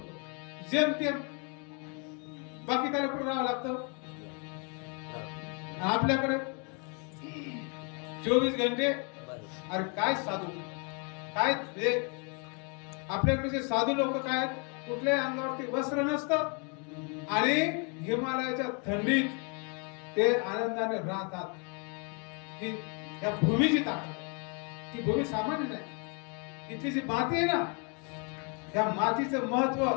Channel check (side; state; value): right; quieter; 36.0 dB